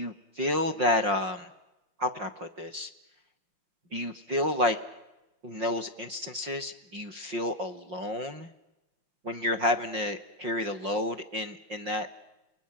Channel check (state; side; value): late; left; 5.6 ms